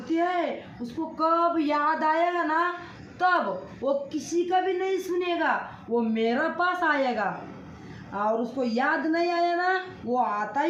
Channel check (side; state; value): both; identical; correlation 1.00